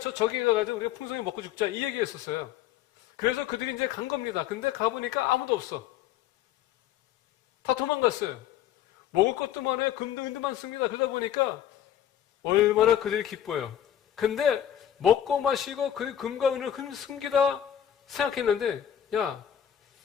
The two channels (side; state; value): right; quieter; 10.4 dB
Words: 가가지고 우리가 풍성히 먹고 죽자 이 얘기했었어요. 그래서 그들이 이제 간 겁니다. 근데 가보니까 아무도 없어. 다 도망갔어요. 먹을 것도 많아요. 금도 은도 많습니다. 그러다 보니까 얼마나 그들이 기뻐요. 근데 먹고 마시고 그 금과 은을 숨기다 생각했는데 야